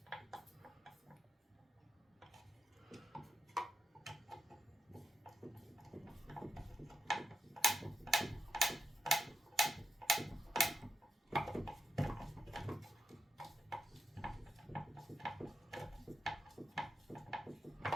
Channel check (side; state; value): both; normal; correlation 0.85